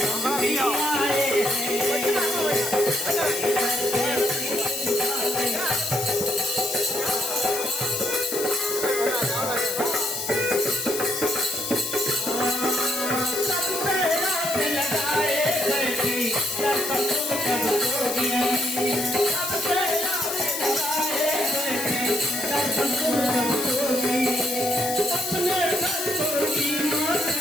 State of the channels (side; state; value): left; noise; hiss, 4 dB below the sound